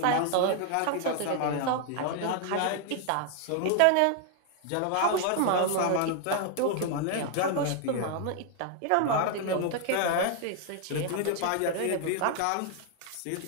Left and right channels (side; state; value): both; different; correlation 0.00